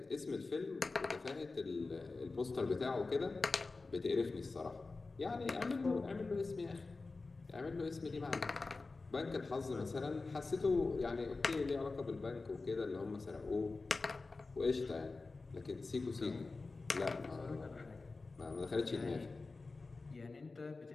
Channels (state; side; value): quieter; right; 3.7 dB